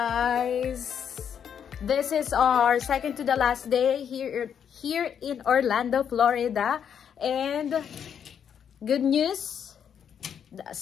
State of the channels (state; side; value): quieter; right; 8.2 dB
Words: This is our second to the last day here in Orlando, Florida. And good news, the